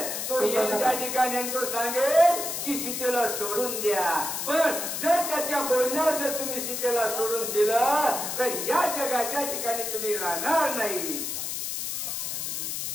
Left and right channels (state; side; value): noise; left; hiss, 3 dB below the sound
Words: तो येईल त्या ठिकाणी आणि तो सांगेल की सीतेला सोडून द्या. पण जर त्याच्या बोलण्यावर जर तुम्ही सीतेला सोडून दिलं तर या जगाच्या ठिकाणी तुम्ही राहणार नाही.